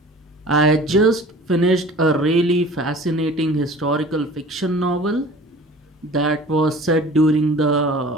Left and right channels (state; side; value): normal; both; correlation 0.44